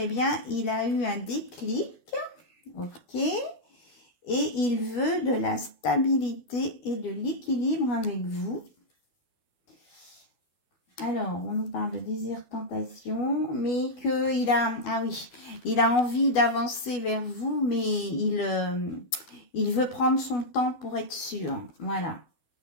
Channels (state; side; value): late; right; 12 ms